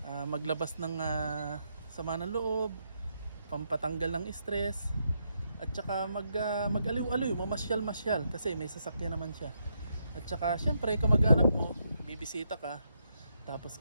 maglabas ng sama ng loob, pampatanggal ng stress, at saka mag-aliw-aliw, mamasyal-masyal kasi may sasakyan naman siya. At saka syempre kamag-anak mo, bibisita ka, tapos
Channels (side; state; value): both; inverted; correlation -0.79